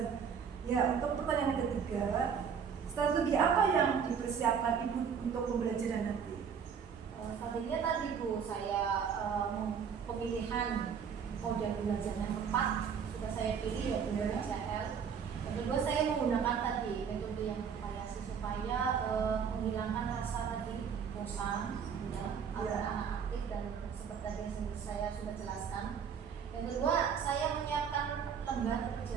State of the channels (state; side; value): quieter; left; 7.0 dB